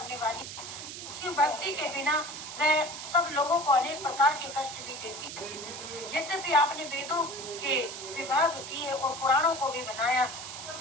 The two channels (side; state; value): right; noise; hiss, 9 dB below the sound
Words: वाली शिव भक्ति के बिना वह सब लोगों को अनेक प्रकार के कष्ट भी देती। यद्यपि आपने वेदों के विभाग किए और पुराणों को भी बनाया,